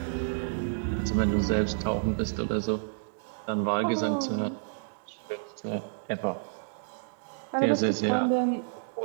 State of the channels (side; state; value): left; silent; digital silence